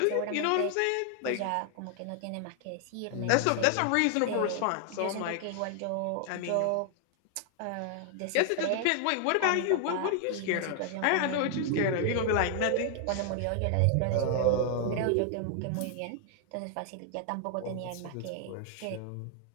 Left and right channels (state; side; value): different; both; correlation 0.00